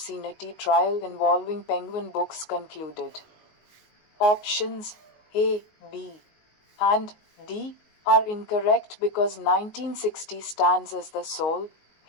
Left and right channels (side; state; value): right; late; 19 ms